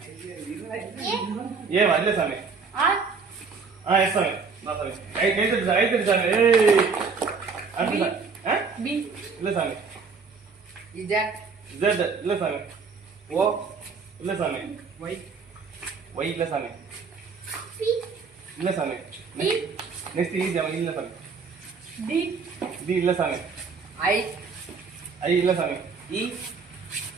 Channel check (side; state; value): left; quieter; 5.0 dB